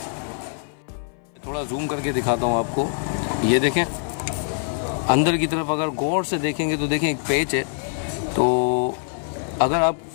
थोड़ा जूम करके दिखाता हूँ आपको। ये देखें, अंदर की तरफ अगर गौर से देखेंगे तो देखें एक पेच है। तो अगर आप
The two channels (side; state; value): right; silent; 58 dB below the other